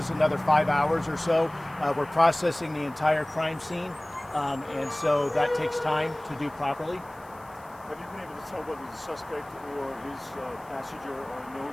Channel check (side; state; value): left; noise; hiss, 27 dB below the sound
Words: another 5 hours or so. We're processing the entire crime scene, and so that takes time to do properly. Have you been able to tell whether the suspect or his passenger are